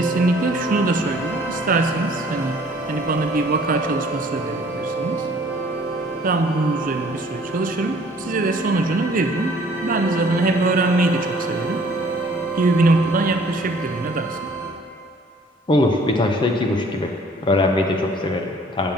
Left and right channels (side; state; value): both; normal; correlation 0.56